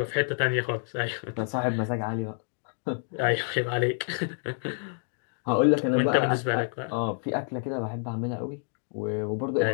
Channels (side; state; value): right; silent; digital silence